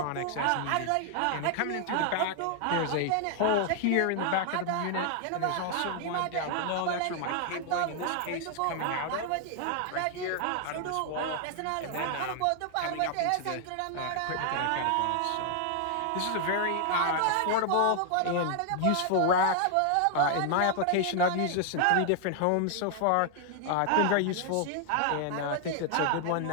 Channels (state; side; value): different; both; correlation 0.00